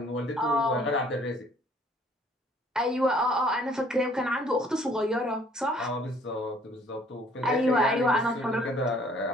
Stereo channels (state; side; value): normal; both; correlation 0.59